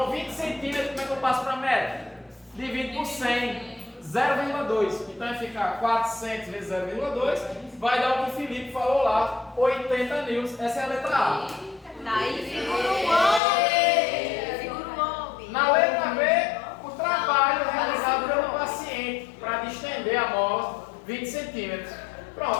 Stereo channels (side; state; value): right; drops out; at 13.4 s